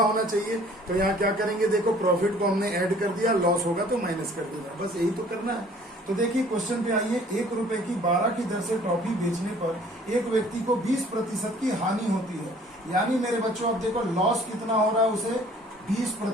होना चाहिए। तो यहाँ क्या करेंगे? देखो प्रॉफिट को हमने ऐड कर दिया, लॉस होगा तो माइनस कर देगा, बस यही तो करना है। तो देखिए क्वेश्चन पे आइए। ₹1 की 12 की दर से टॉफी बेचने पर एक व्यक्ति को 20% की हानि होती है। यानी मेरे बच्चों अब देखो लॉस कितना हो रहा है उसे?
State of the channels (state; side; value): normal; both; correlation 0.54